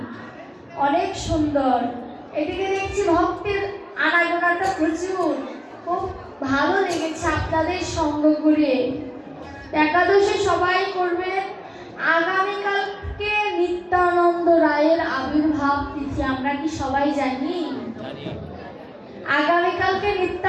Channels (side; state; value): both; identical; correlation 1.00